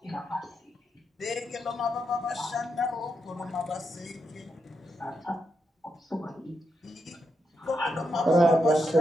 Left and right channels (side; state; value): both; normal; correlation 0.83